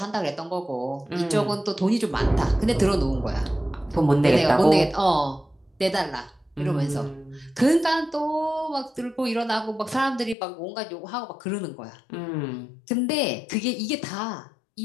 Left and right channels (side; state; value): right; drops out; at 10.4 s